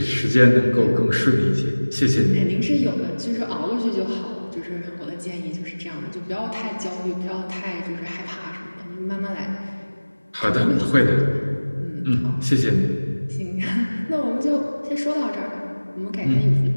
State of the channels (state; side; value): inverted; both; correlation -1.00